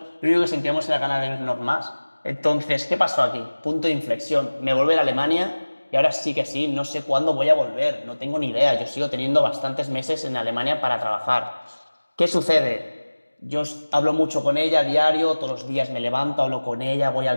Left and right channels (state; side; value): inverted; both; correlation -1.00